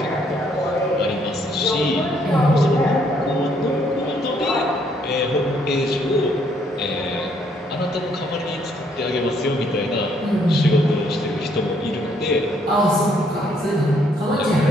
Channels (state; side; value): normal; both; correlation 0.69